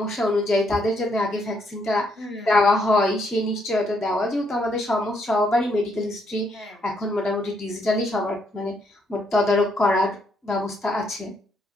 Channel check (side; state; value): both; normal; correlation 0.73